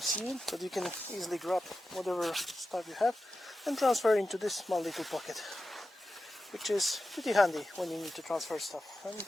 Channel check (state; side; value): normal; both; correlation 0.92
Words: see it, but you can easily grab whatever stuff you have and transfer into this small little pocket, which is pretty handy when you need to transfer stuff. And